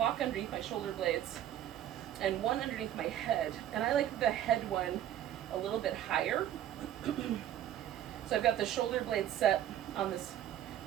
underneath my shoulder blades and one underneath my head. And I like the head one a little bit higher. So I've got the shoulder blade set on this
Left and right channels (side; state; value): left; quieter; 11.5 dB